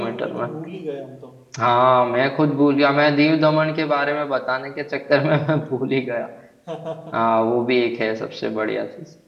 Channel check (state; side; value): identical; both; correlation 1.00